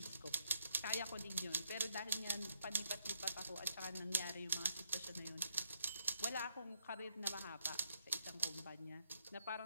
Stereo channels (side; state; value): both; inverted; correlation -0.72